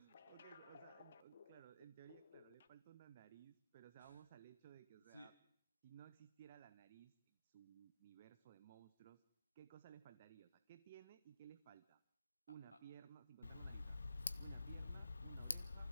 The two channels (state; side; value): inverted; both; correlation -0.87